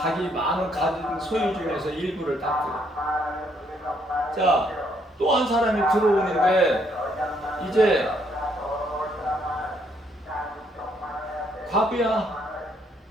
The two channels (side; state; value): both; normal; correlation 0.70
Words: 많은 가진 소유 중에서 일부를 딱 들어. 또 한 사람이 들어오는데 이제 과부야,